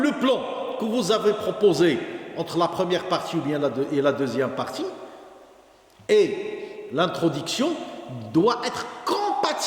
plan que vous avez proposé entre la première partie ou bien la deuxième partie et l'introduction doit être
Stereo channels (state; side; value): identical; both; correlation 1.00